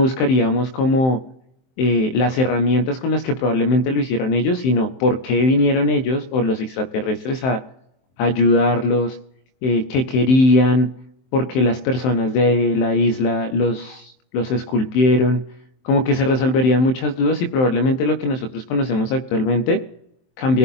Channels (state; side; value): late; right; 23 ms